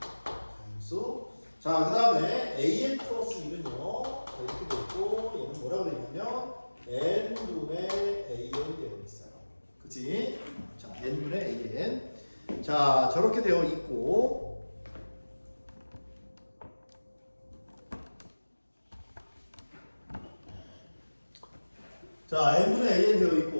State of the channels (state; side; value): inverted; both; correlation -1.00